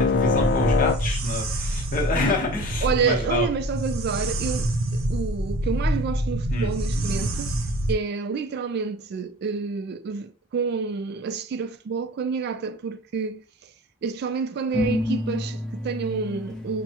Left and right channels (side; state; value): both; normal; correlation 0.40